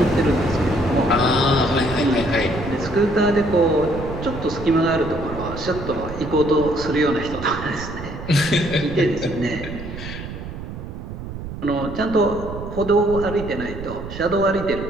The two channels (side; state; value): right; noise; rumble, 9 dB below the sound